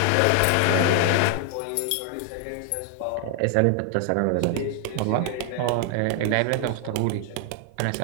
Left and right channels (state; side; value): different; both; correlation 0.00